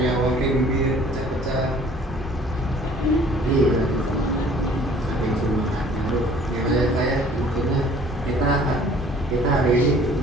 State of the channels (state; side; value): normal; both; correlation 0.53